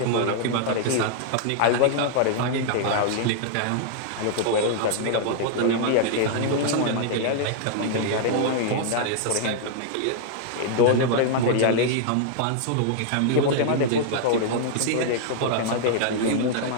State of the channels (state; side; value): different; both; correlation -0.01